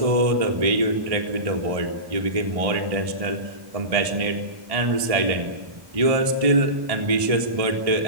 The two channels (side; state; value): left; late; 1.6 ms